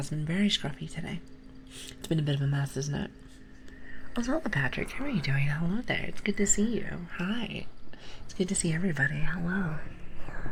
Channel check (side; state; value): both; identical; correlation 1.00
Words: been very scruffy today. It's been a bit of a mess, isn't it? Also, Patrick, how are you doing? Hello there. It's good to see you. Hi. It's good to see everybody. Hello.